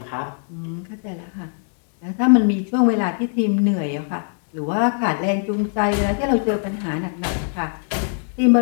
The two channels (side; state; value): right; silent; 55 dB below the other